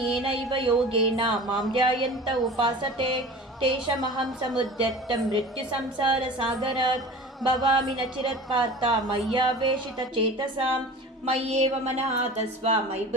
योगेन मां ध्यायन्त उपासते तेषामहं समुद्धर्तं मृत्युसंसारसागरात् भवामि न चिरत्पार्थ मय्यावेशितचेतसां मय्येव मनः तस्व मयि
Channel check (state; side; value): normal; both; correlation 0.38